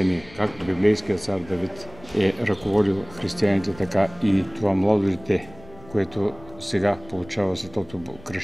Както библейският цар Давид е ръководил християните, така и това младо дете, което сега получава светото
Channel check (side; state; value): left; noise; rumble, 21 dB below the sound